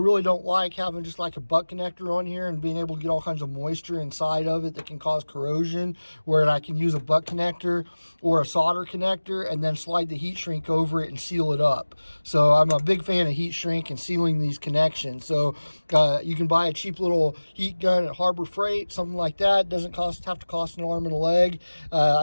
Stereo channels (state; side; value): inverted; both; correlation -1.00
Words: don't like having just like a butt connector on here and being able to get all kinds of moisture inside of it that can cause corrosion, where I can use a butt connector or a solder connector and then slide the heat shrink over it and seal it up. So I'm a big fan of heat shrink and sealing these connections. So you can buy a cheap little heat gun at Harbor Freight, something like that. Doesn't have to cost an arm and a leg.